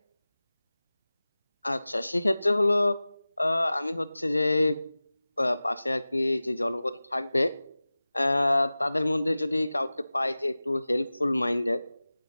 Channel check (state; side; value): inverted; both; correlation -0.98